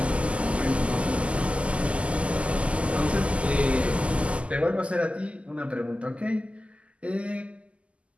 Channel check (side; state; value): left; late; 0.058 ms